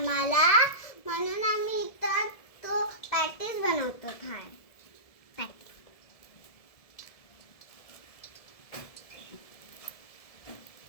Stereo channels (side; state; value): right; late; 1.7 ms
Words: म्हणून आम्ही इथं तो पॅटीस बनवतो.